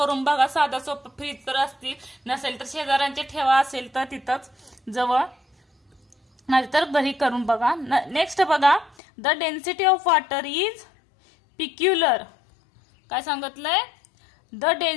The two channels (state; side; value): drops out; right; at 9.0 s